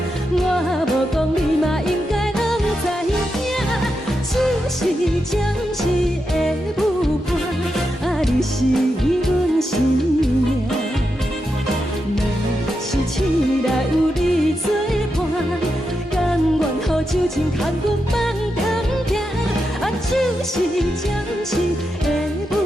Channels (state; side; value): normal; both; correlation 0.86